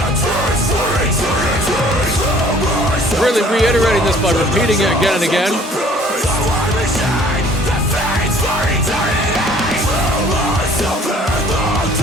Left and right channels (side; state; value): both; normal; correlation 0.55